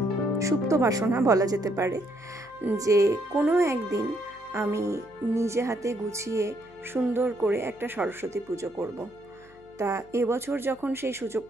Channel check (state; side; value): noise; left; hum, 26 dB below the sound